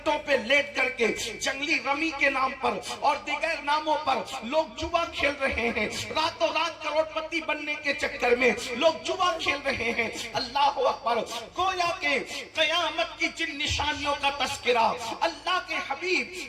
پہ لیٹ کر کے جنگلی رمی کے نام پر اور دیگر ناموں پر لوگ جوا کھیل رہے ہیں. راتوں رات کروڑ پتی بننے کے چکر میں لوگ جوا کھیل رہے ہیں. اللہ اکبر. گویا کہ قیامت کی جن نشانیوں کا تذکرہ اللہ کے حبیب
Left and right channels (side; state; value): both; identical; correlation 1.00